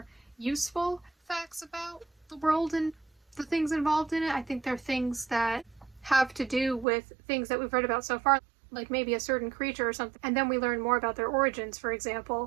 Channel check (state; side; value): drops out; left; at 6.9 s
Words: useful facts about the world and the things involved in it. I think they're things that have to do with things that we've read about so far, like maybe a certain creature or something, and then we learn more about their origins, for